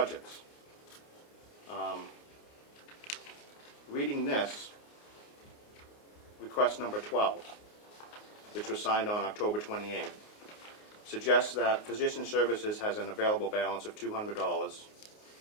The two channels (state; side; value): late; right; 29 ms